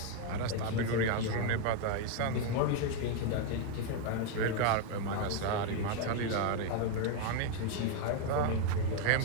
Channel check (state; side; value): different; both; correlation 0.01